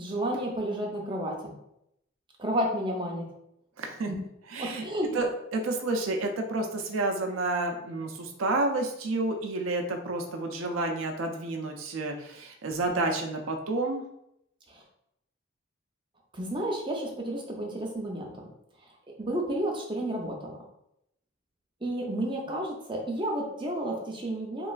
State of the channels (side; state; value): both; normal; correlation 0.25